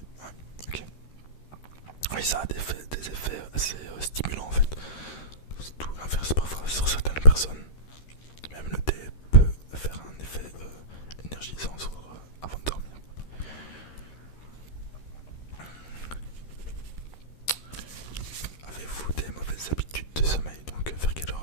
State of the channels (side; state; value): right; late; 13 ms